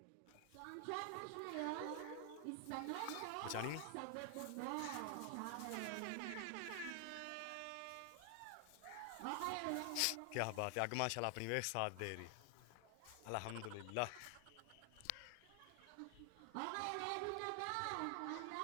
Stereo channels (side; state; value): both; different; correlation 0.00